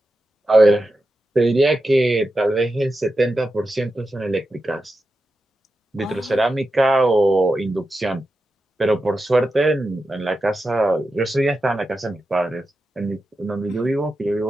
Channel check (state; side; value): normal; both; correlation 0.90